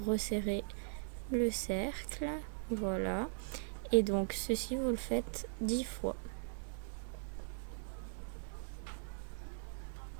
resserrer le cercle. Voilà. Et donc ceci, vous le faites 10 fois.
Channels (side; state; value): left; silent; digital silence